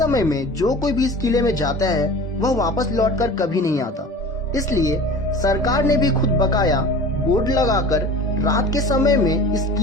में जो कोई भी इस किले में जाता है वह वापस लौटकर कभी नहीं आता। इसलिए सरकार ने भी खुद बकाया बोर्ड लगाकर रात के समय में इस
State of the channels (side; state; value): both; normal; correlation 0.38